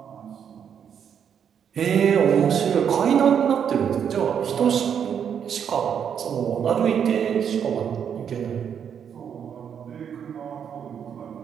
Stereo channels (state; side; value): quieter; left; 8.0 dB